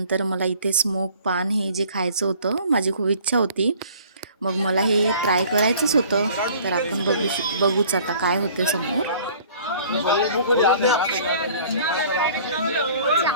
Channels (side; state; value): both; inverted; correlation -0.51